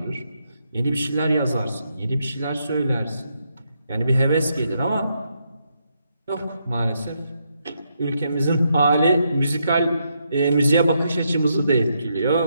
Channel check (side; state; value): both; inverted; correlation -0.79